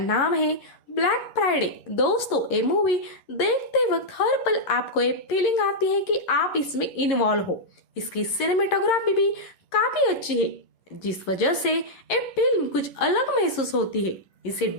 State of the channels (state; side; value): late; right; 11 ms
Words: है ब्लैक फ्राइडे। दोस्तों, ये मूवी देखते वक्त हर पल आपको ये फीलिंग आती है कि आप इसमें इन्वॉल्व हो। इसकी सिनेमेटोग्राफी भी काफी अच्छी है, जिस वजह से ये फिल्म कुछ अलग महसूस होती है। इसे